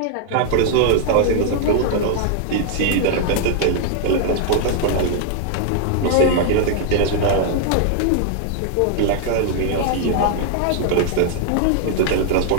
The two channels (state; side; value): different; both; correlation 0.00